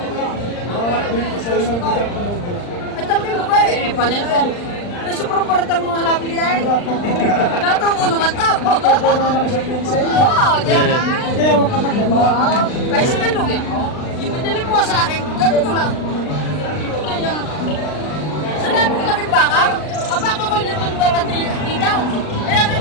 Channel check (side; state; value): right; late; 39 ms